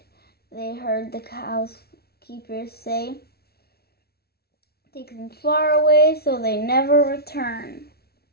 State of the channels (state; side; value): late; right; 0.45 ms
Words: they heard the housekeeper say. "Take them far away so they never return."